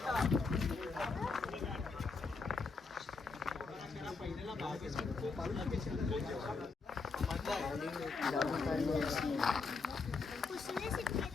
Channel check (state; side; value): quieter; right; 4.4 dB